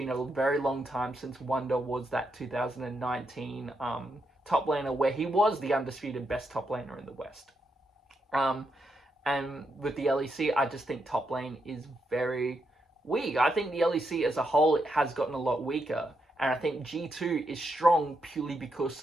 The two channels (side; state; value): both; normal; correlation 0.82